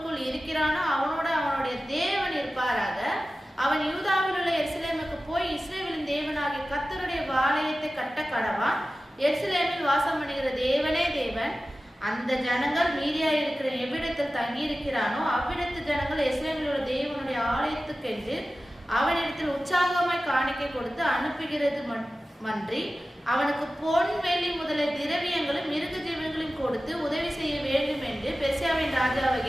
இருக்கிறானோ அவனோட அவனுடைய தேவன் இருப்பாராக. அவன் யூதாவில் உள்ள எருசலேமுக்கு போய் இஸ்ரவேலின் தேவனாகிய கர்த்தருடைய ஆலயத்தை கட்ட கடவான். எருசலேமில் வாசம் பண்ணுகிற தேவனே தேவன். அந்த ஜனங்கள் மீதியா இருக்கிற எவ்விடத்தில் தங்கி இருக்கிறானோ அவ்விடத்து ஜனங்கள் எருசலேமில் உள்ள தேவனுடைய ஆலயத்துக்கென்று அவனிடத்தில் உற்சாகமாய் காணிக்கை கொடுத்து அனுப்புகிறது மன்றி அவனுக்கு பொன் வெள்ளி முதலிய திரவியங்களும் மிருக ஜீவன்களையும் கொடுத்து உதவி செய்ய வேண்டும் என்று பெர்சியாவின் பெர்சியாவின்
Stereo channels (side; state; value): both; normal; correlation 0.95